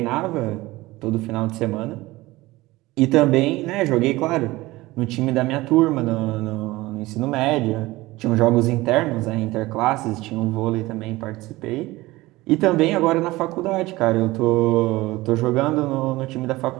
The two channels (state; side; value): quieter; left; 19.4 dB